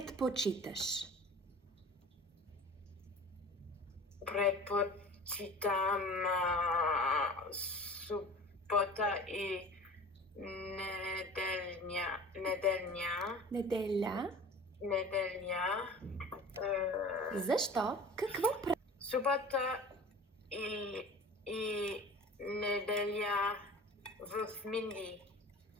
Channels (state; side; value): normal; both; correlation 0.40